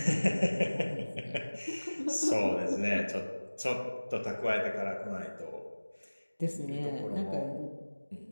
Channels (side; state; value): both; inverted; correlation -1.00